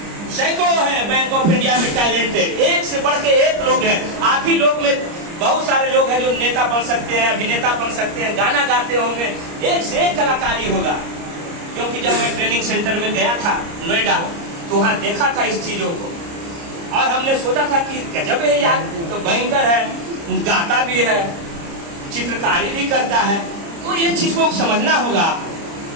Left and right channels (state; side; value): late; left; 30 ms